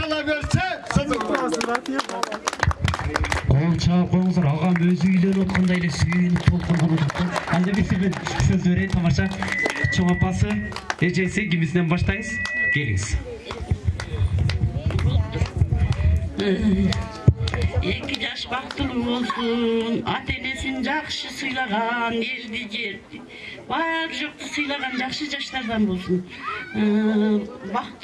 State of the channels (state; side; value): identical; both; correlation 1.00